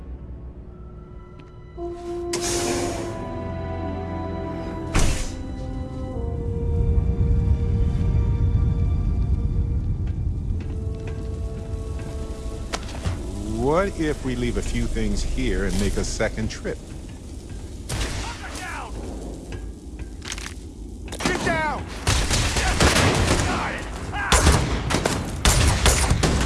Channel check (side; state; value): both; identical; correlation 1.00